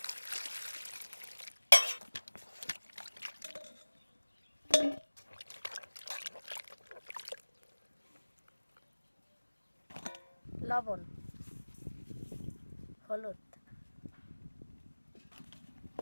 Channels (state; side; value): inverted; both; correlation -1.00